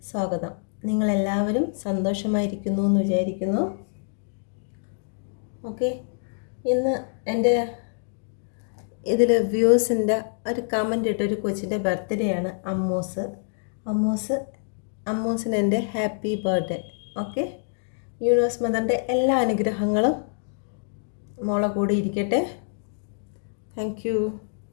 സ്വാഗതം. നിങ്ങളെല്ലാവരും സന്തോഷമായിരിക്കുന്നു എന്ന് വിചാരിക്കുന്നു. ഓക്കെ, ഇന്ന് എൻ്റെ ഇതിൽ വ്യൂസിൻ്റെ ഒരു കമൻ്റ് ഇട്ട ഒരു കൊച്ചിൻ്റെ ബർത്ത്ഡേ ആണ്. അമ്മൂസിന് എൻ്റെ ഹാപ്പി ബർത്ത്ഡേ. ഓക്കെ, യൂണിവേഴ്സ് മദറിൻ്റെ എല്ലാ അനുഗ്രഹങ്ങളും മോളെ കൂടി ഇരിക്കട്ടെ. Thank you.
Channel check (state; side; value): silent; right; digital silence